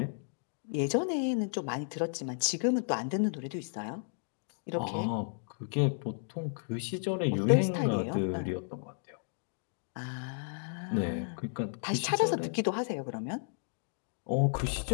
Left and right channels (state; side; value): silent; right; digital silence